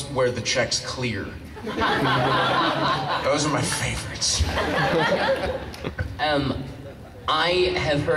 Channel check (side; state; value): both; identical; correlation 1.00